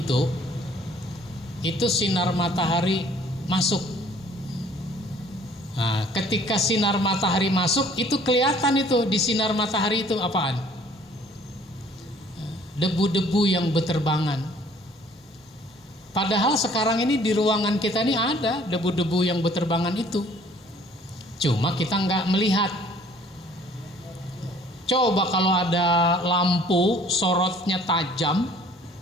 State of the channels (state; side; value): normal; both; correlation 0.56